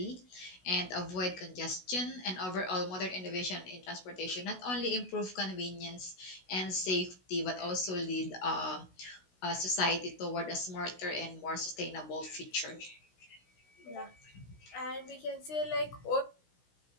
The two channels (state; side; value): late; right; 16 ms